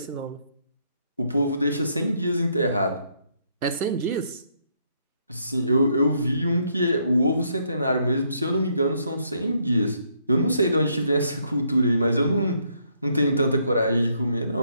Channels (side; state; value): both; inverted; correlation -0.72